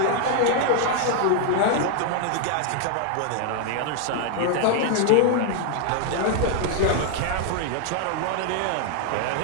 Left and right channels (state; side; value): different; both; correlation 0.00